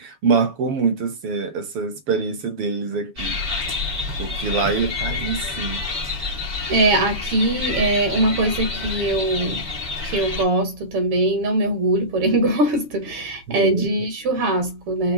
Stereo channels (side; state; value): left; late; 7.1 ms